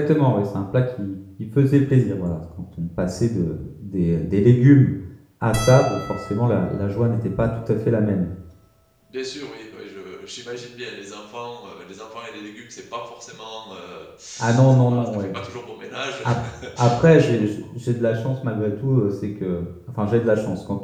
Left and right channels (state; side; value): identical; both; correlation 1.00